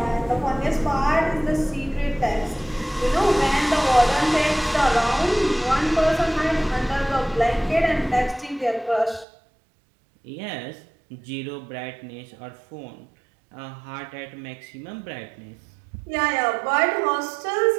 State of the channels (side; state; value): left; drops out; at 9.2 s